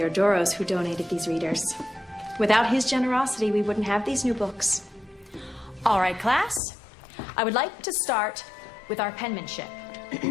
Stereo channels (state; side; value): drops out; right; at 6.6 s